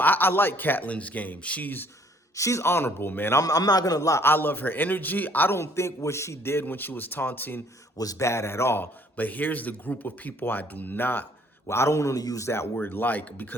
like Catlin's game. She's honorable, man. I'm not going to lie. I love her energy. I don't think what she did when she was taunting was bad at all. But here's the group of people I do not. Well, I don't want to use that word like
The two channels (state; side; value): normal; both; correlation 0.60